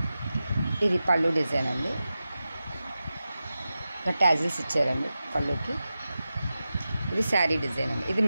ఇది పళ్ళు డిజైన్ అండి. ట్యాజిల్స్ ఇచ్చారండి పళ్ళుకి. ఇది శారీ డిజైన్ అండి. ఇది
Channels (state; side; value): inverted; both; correlation -0.93